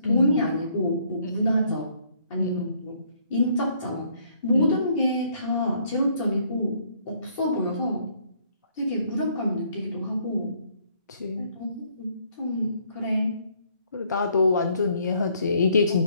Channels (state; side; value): inverted; both; correlation -0.66